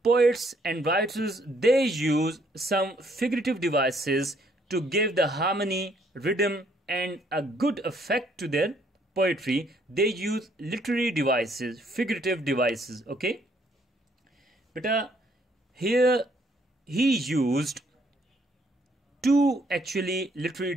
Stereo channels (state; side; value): normal; both; correlation 0.67